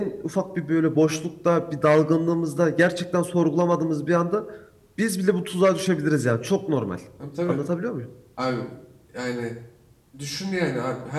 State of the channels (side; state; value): both; identical; correlation 1.00